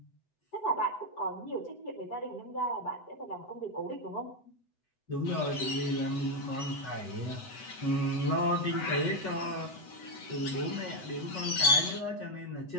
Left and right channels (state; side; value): late; right; 8.0 ms